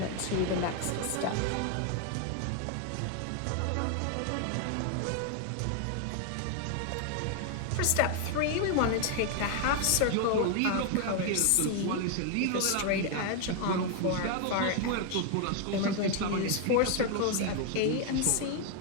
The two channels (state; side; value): different; both; correlation 0.01